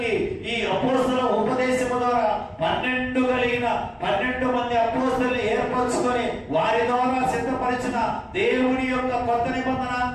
ఈ అపోస్తల ఉపదేశము ద్వారా 12 కలిగిన 12 మంది అపోస్తలుని ఏర్పరచుకొని వారి ద్వారా సిద్ధపరిచిన దేవుని యొక్క కొత్త నిబంధన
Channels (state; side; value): identical; both; correlation 1.00